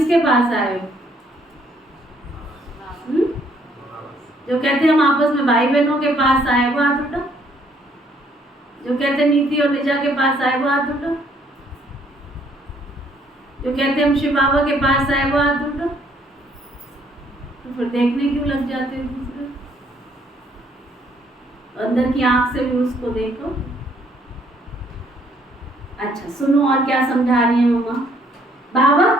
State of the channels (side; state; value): both; normal; correlation 0.66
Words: पास आए हो? जो कहते हम आपस में भाई बहनों के पास आए वो हाथ उठा। जो कहते नीति और निजा के पास आए वो हाथ उठा। जो कहते हम शिव बाबा के पास आए वो हाथ उठा। तो फिर देखने क्यों लग जाते हैं दूसरे? अंदर की आंख से भी उसको देखो। अच्छा सुनो और क्या समझा रही है मम्मा। बाबा